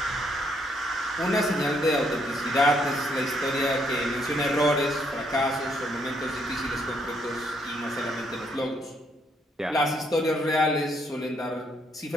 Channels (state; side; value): normal; both; correlation 0.72